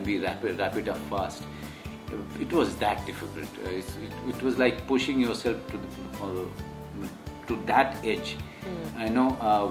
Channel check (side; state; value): both; identical; correlation 1.00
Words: we wrap it up fast? It was that difficult. It was like pushing yourself to that edge.